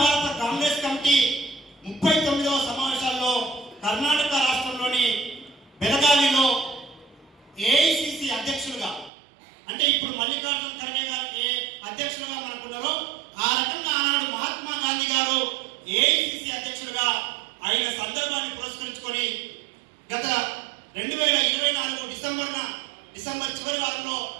కాంగ్రెస్ కమిటీ 39వ సమావేశాల్లో కర్ణాటక రాష్ట్రంలోని బెళగావిలో ఏఐసిసి అధ్యక్షులుగా, అంటే ఇప్పుడు మల్లికార్జున ఖర్గే గారికి అధ్యక్షులుగా మనకున్నారో ఆ రకంగా ఆనాడు మహాత్మా గాంధీ గారు ఏఐసిసి అధ్యక్షులుగా అయిన సందర్భాన్ని పురస్కరించుకొని గత 2024 డిసెంబర్ చివరి వారంలో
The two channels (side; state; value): left; drops out; at 9.1 s